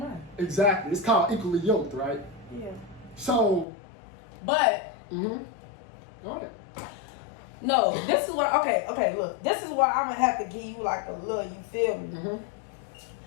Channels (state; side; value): drops out; right; at 3.7 s